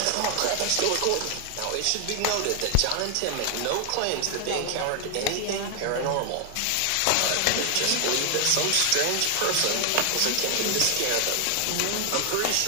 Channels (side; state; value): both; different; correlation 0.00